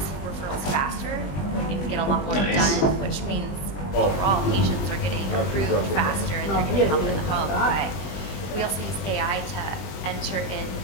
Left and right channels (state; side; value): late; right; 20 ms